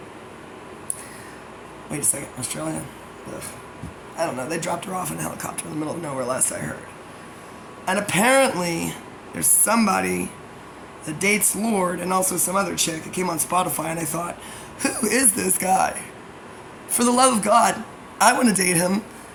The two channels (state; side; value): identical; both; correlation 1.00